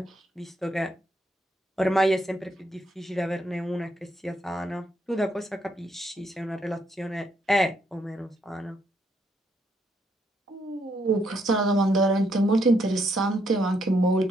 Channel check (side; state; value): both; normal; correlation 0.74